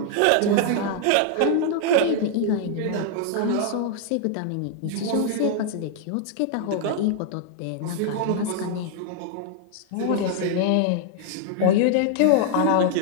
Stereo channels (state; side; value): different; both; correlation 0.00